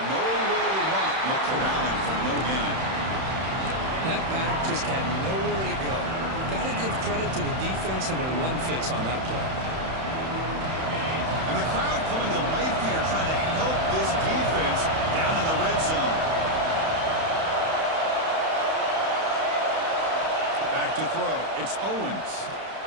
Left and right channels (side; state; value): left; late; 31 ms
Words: to run. Look corralling for no gain. That back just had nowhere to go. Got to give credit to the defense and their run fits on that play. And the crowd coming to life here, trying to help this defense down in the red zone. Back to throw. It's Owens.